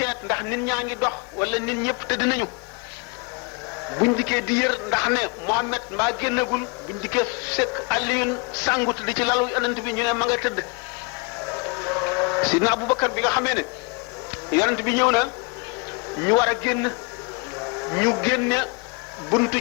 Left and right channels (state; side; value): quieter; right; 31.5 dB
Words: ndax nit ñaa ngi dox wala nit ñëpp tëdd nañu buñ dikkee di yër ndax ne Muhammad mbaa génnagul buñ dikkee fekk Aliyun sàngut di ci lalu yonent bi ñu ne ma nga tëdd Sidna Aboubacar bi nga xamee ne yonent bi ñëw na ñu war a génn ñu génne buntu